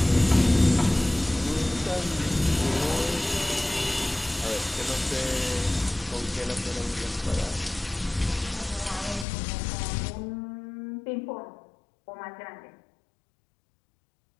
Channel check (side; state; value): right; drops out; at 9.2 s